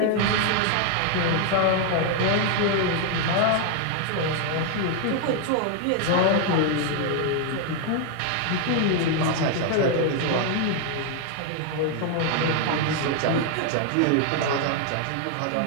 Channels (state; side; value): different; both; correlation 0.01